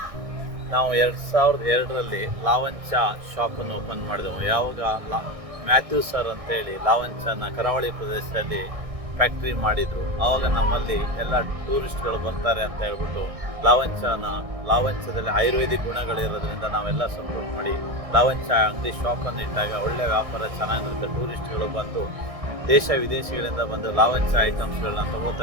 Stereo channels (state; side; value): late; left; 1.6 ms